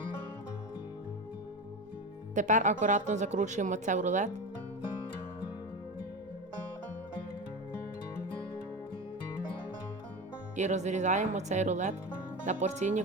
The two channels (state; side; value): normal; both; correlation 0.25